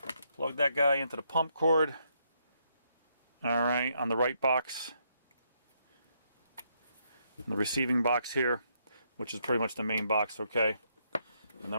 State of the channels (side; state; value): both; inverted; correlation -0.76